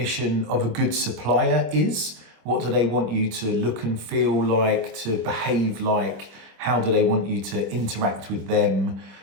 of a good supplier is. What do they want you to look and feel like, to behave like? How do they want you to interact with them?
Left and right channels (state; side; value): late; left; 26 ms